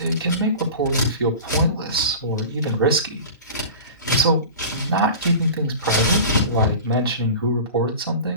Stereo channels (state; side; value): inverted; both; correlation -0.35